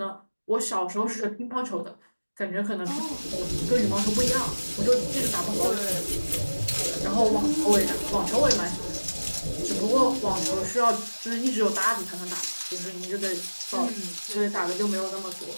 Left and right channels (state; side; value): inverted; both; correlation -1.00